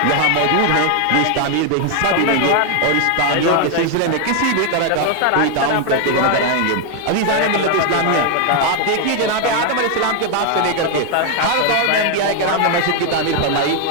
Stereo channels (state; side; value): different; both; correlation 0.01